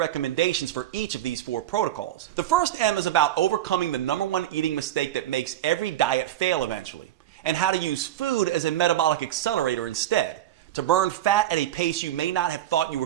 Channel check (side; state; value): left; quieter; 12.5 dB